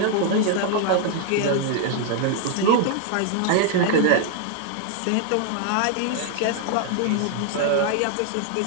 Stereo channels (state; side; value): different; both; correlation 0.00